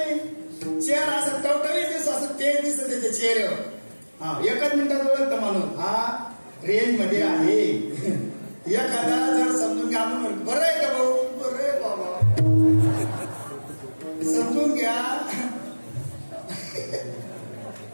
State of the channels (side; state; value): both; inverted; correlation -1.00